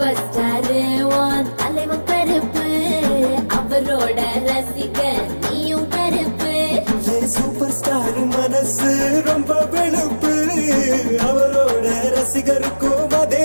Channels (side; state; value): both; inverted; correlation -1.00